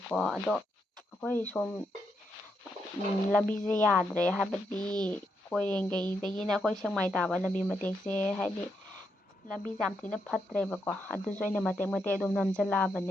ꯑꯗꯣ ꯑꯩꯈꯣꯏ ꯁꯣꯝ ꯂꯝꯕꯤꯁꯦ ꯌꯥꯗ꯭ꯔꯦ ꯍꯥꯏꯕꯗꯤ ꯀꯣꯏꯔꯦꯡꯒꯩꯗꯒꯤꯅ ꯑꯩꯈꯣꯏ ꯁꯦꯛꯃꯥꯏ ꯇꯥꯕ ꯂꯝꯕꯤ ꯃꯇꯦꯛꯁꯦ ꯍꯥꯏꯗꯤ ꯂꯝꯕꯤꯁꯦ ꯌꯥꯝ ꯊꯤꯅ ꯐꯠꯇ꯭ꯔꯦꯕꯀꯣ ꯑꯗꯨꯁꯨ ꯑꯩꯅ ꯃꯇꯦꯛ ꯃꯇꯦꯛ ꯑꯗꯨꯝ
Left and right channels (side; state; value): both; normal; correlation 0.81